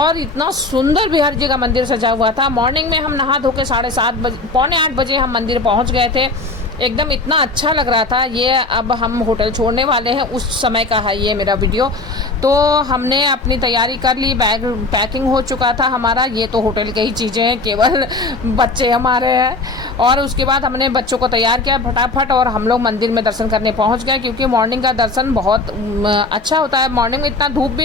इतना सुंदर बिहारी जी का मंदिर सजा हुआ था। मॉर्निंग में हम नहा धो के 7:30 बजे, पौने 8 बजे हम मंदिर पहुँच गए थे। एकदम इतना अच्छा लग रहा था। ये अब हम होटल छोड़ने वाले हैं, उस समय का है ये मेरा वीडियो। तो हमने अपनी तैयारी कर ली, बैग पैकिंग हो चुका था हमारा। ये तो होटल की ही चीज़ें हैं, केवल बच्चे हमारे हैं। और उसके बाद हमने बच्चों को तैयार किया फटाफट और हम लोग मंदिर में दर्शन करने पहुंच गए, क्योंकि मॉर्निंग का दर्शन बहुत अच्छा होता है। मॉर्निंग में इतना धूप भी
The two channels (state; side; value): quieter; right; 3.3 dB